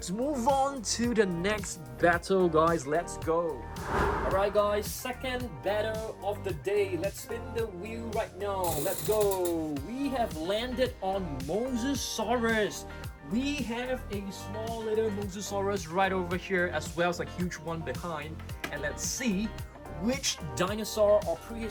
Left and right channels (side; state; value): both; identical; correlation 1.00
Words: move on to the next battle, guys. Let's go. Alright guys, second battle of the day. Let's spin the wheel right now. Let's go. We have landed on Majungasaurus. We have a small little Majungasaurus right over here, as well as a huge one behind. And let's see which dinosaur or